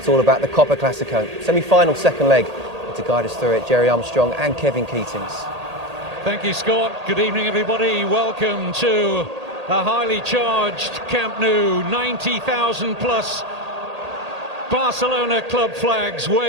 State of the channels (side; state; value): left; late; 1.8 ms